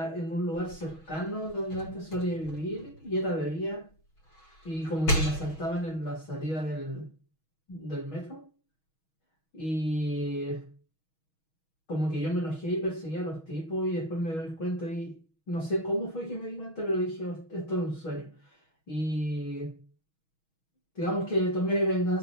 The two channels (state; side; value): late; right; 6.3 ms